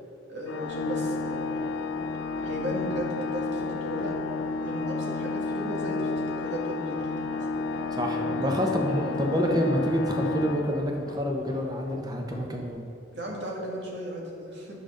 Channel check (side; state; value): both; normal; correlation 0.53